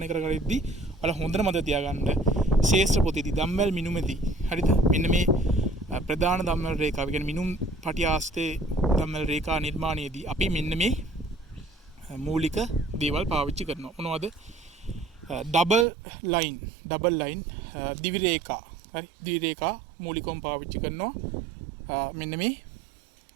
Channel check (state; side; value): drops out; left; at 15.9 s